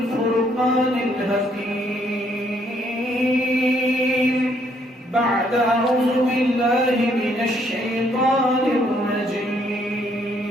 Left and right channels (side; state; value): both; normal; correlation 0.68